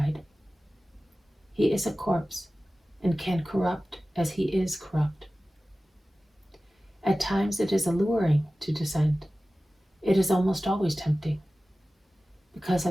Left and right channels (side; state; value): both; normal; correlation 0.96